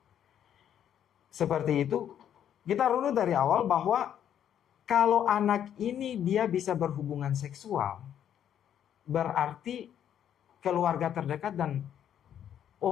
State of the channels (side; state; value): right; quieter; 9.8 dB